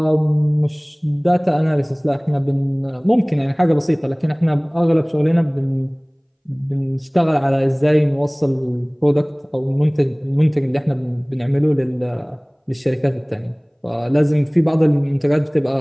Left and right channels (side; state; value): both; identical; correlation 1.00